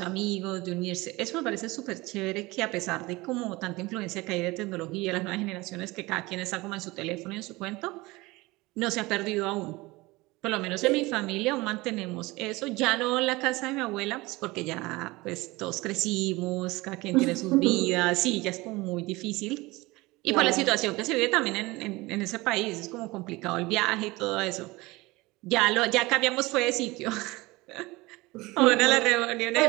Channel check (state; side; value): quieter; left; 21.7 dB